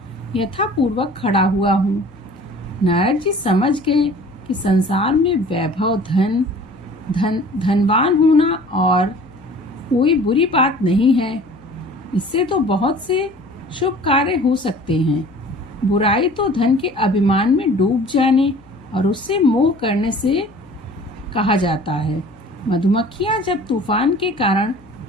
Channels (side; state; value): left; noise; hum, 27 dB below the sound